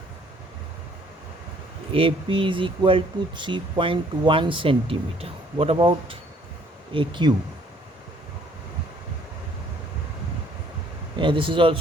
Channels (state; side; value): normal; both; correlation 0.61